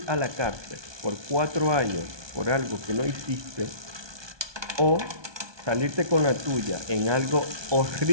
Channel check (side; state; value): left; late; 1.2 ms